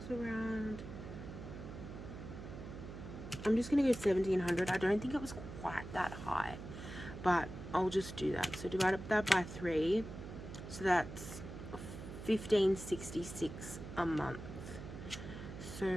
was around I'm just going to go 1700. I don't think it was quite that high, but I'll just do that. So divide that by 3. So that's 1566 a month. So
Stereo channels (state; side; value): noise; right; hum, 10 dB below the sound